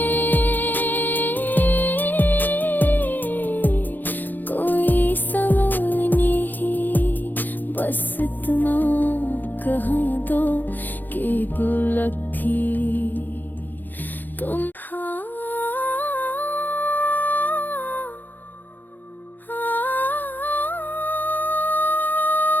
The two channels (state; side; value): late; right; 0.087 ms